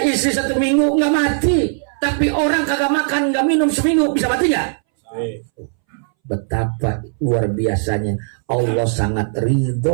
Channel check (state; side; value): silent; left; 65 dB below the other